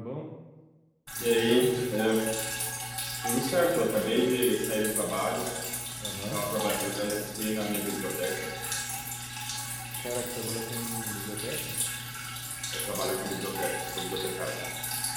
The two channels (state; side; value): identical; both; correlation 1.00